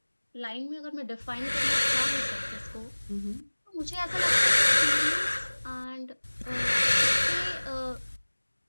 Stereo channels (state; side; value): inverted; both; correlation -1.00